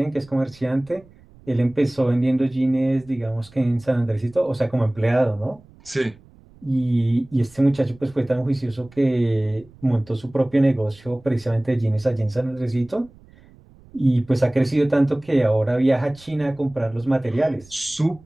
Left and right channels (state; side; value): noise; right; rumble, 26 dB below the sound